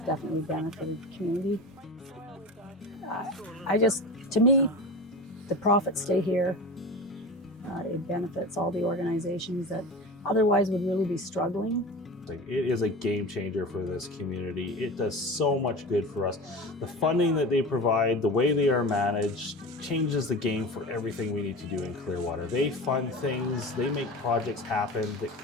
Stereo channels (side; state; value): both; normal; correlation 0.30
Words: definitely benefited the community. To me, the profits stay here. It benefits all the organizations that otherwise would really be struggling. It is a game changer for this community. It does so much good for us. The funding that they provide, the way they are managed, changes the game for everything we need to do in Clearwater. They fund things, they make projects happen that